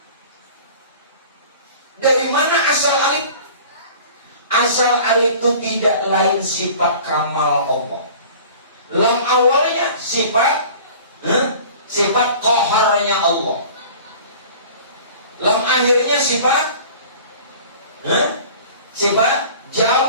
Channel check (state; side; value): inverted; both; correlation -0.43